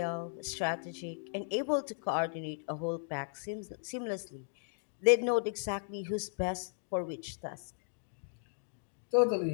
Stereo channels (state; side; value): silent; right; digital silence